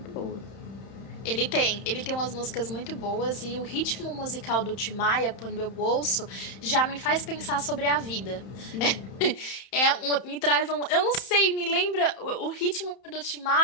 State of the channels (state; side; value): late; right; 31 ms